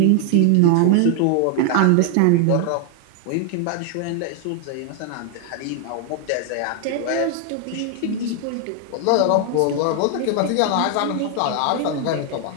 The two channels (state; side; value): different; both; correlation 0.00